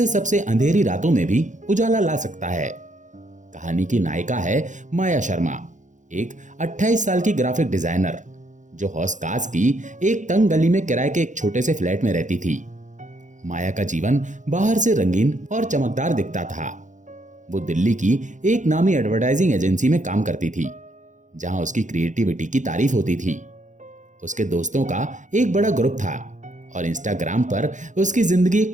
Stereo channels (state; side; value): late; left; 0.36 ms